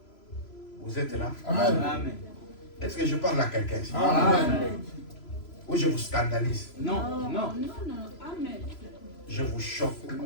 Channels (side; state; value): right; late; 3.0 ms